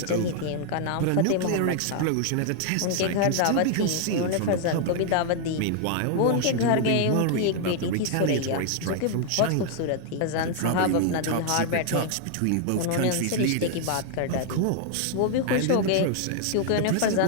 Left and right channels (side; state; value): both; different; correlation 0.00